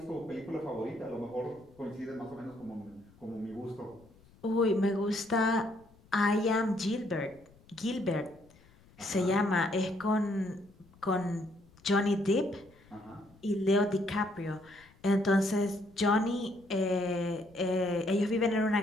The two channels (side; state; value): left; noise; rumble, 27 dB below the sound